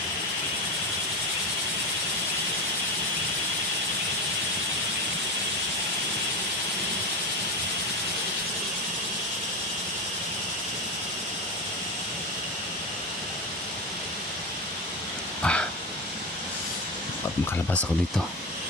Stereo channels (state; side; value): normal; both; correlation 0.18